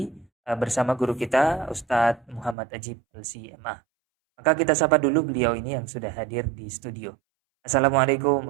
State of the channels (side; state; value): left; drops out; at 2.6 s